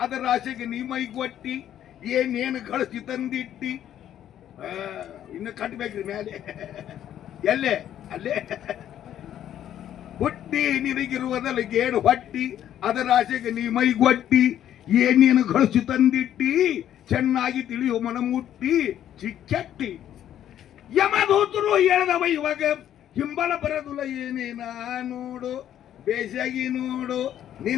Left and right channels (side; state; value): right; quieter; 10.9 dB